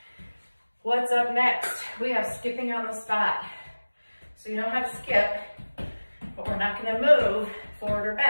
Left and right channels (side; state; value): both; inverted; correlation -1.00